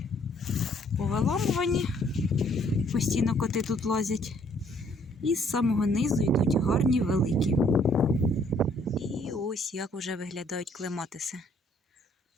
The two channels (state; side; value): normal; both; correlation 0.64